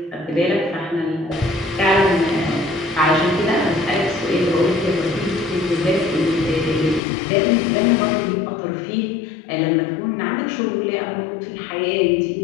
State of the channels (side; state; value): right; drops out; at 7.0 s